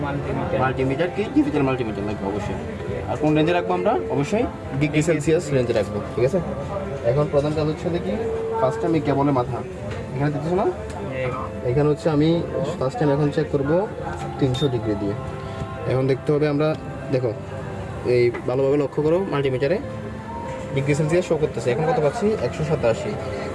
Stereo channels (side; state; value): both; identical; correlation 1.00